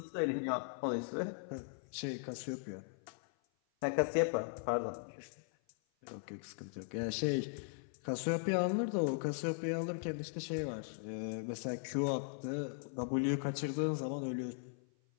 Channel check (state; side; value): silent; right; 52 dB below the other